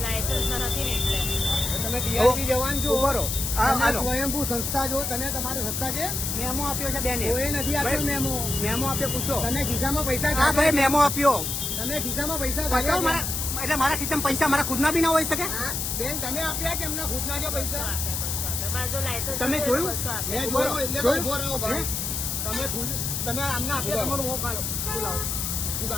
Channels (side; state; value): left; noise; hiss, 2 dB below the sound